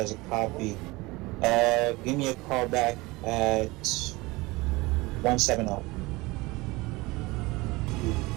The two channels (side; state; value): left; quieter; 22.3 dB